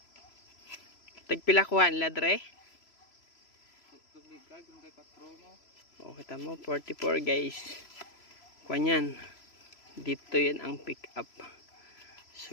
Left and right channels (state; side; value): late; right; 3.0 ms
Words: Tagpilakuan ladre. Oh, kita mo 44 guys. Kuan dito 'yan ang pick up.